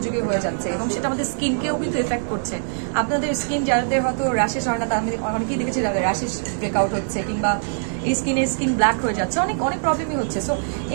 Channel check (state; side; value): silent; left; 64 dB below the other